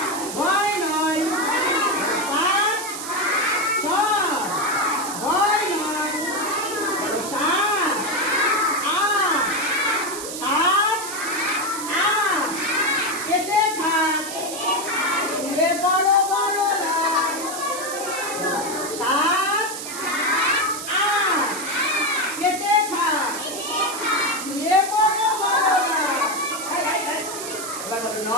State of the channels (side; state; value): right; noise; hiss, 8 dB below the sound